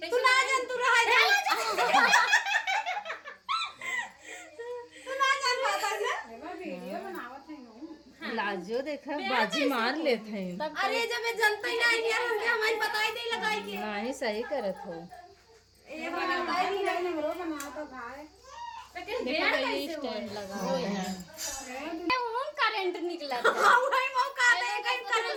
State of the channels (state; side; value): identical; both; correlation 1.00